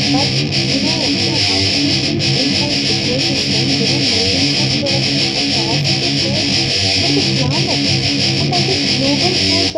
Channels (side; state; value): both; identical; correlation 1.00